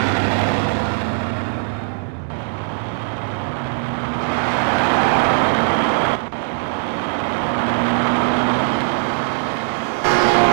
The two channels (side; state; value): left; silent; digital silence